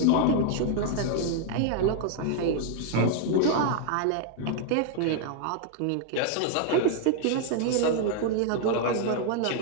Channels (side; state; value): both; different; correlation 0.00